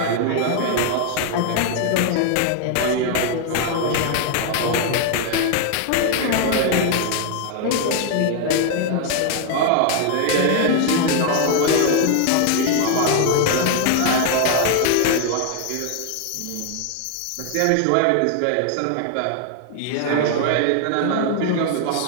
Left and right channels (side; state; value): both; different; correlation 0.00